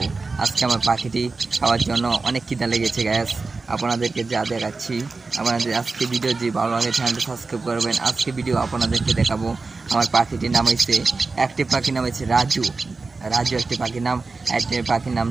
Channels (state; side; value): quieter; left; 3.9 dB